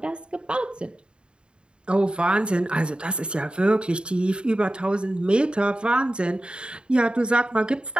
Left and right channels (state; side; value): late; left; 0.052 ms